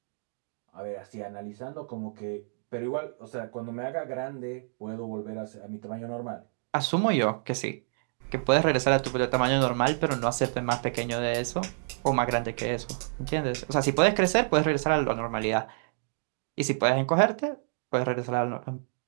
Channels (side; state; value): left; silent; digital silence